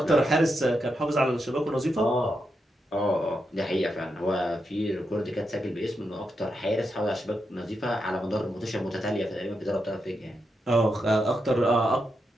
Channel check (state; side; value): normal; both; correlation 0.85